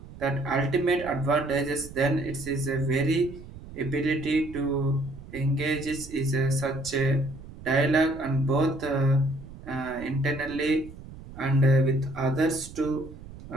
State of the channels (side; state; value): right; noise; rumble, 16 dB below the sound